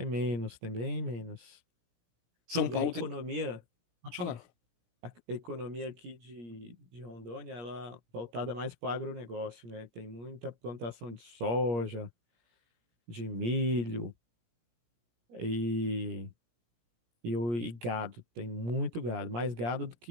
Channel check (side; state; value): left; late; 17 ms